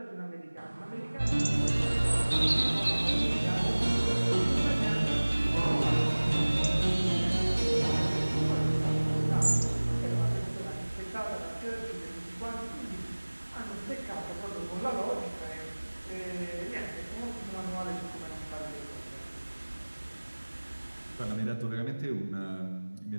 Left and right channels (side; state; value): both; inverted; correlation -1.00